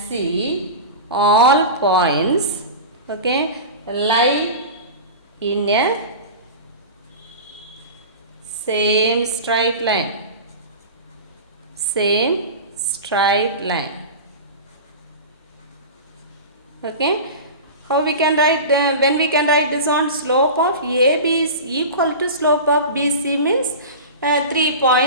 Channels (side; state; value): both; inverted; correlation -0.30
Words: all points, okay, lie in a same straight line. Okay, how we can write, when we can write this on, slope of AB is equal to slope of BC means 3